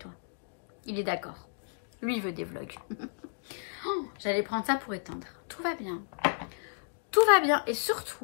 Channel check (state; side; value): silent; right; digital silence